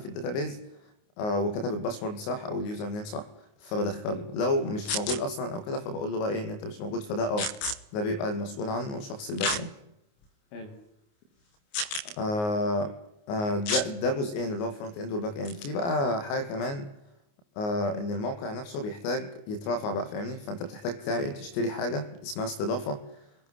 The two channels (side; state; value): right; late; 29 ms